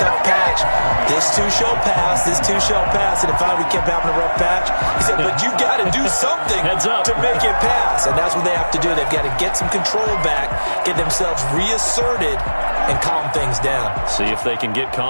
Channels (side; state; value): both; inverted; correlation -1.00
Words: patch, this too shall pass, this too shall pass. And finally we kept having a rough patch. He said, but you got to do something to make it pass. And that's what they have to do. They've got to get some control back, get themselves reasserted, and calm things down. See if they can get